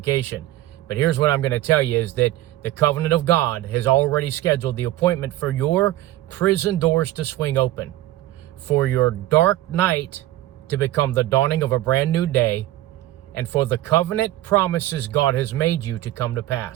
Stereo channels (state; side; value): quieter; left; 15.2 dB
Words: But here's what I'm going to tell you is that the covenant of God has already scheduled the appointment for your prison doors to swing open, for your dark night to become the dawning of a brand new day, and for the covenant promises God has made you to come to